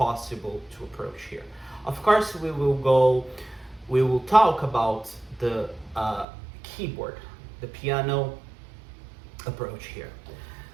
to approach here. Of course, we will talk about the keyboard, the piano approach here.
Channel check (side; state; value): left; drops out; at 6.2 s